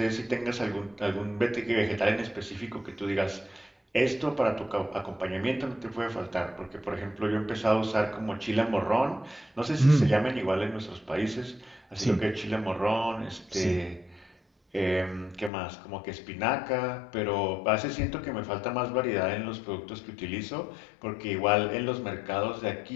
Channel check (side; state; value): right; drops out; at 15.5 s